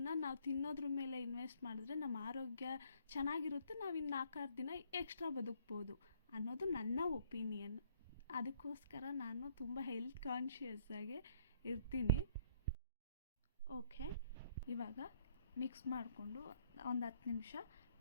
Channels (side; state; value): both; inverted; correlation -0.65